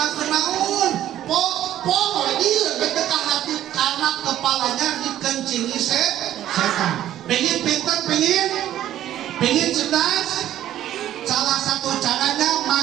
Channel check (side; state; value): left; quieter; 12.3 dB